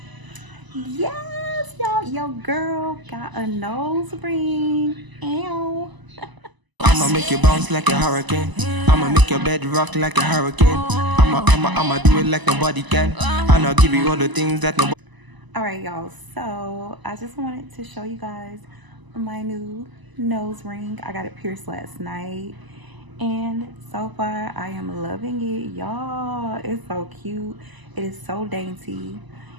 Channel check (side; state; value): left; late; 1.0 ms